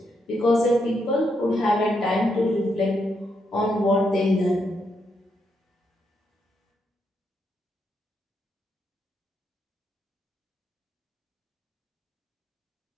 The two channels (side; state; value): both; normal; correlation 0.79